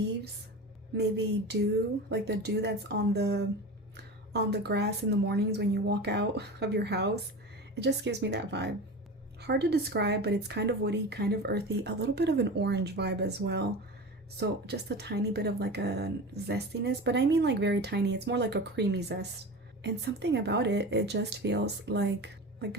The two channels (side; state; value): both; normal; correlation 0.30